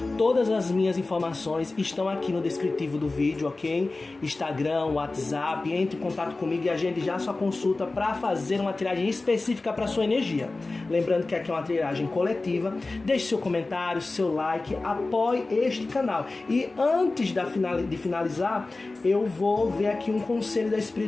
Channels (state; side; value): quieter; right; 3.3 dB